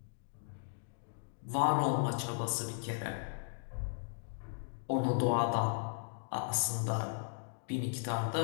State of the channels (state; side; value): silent; right; digital silence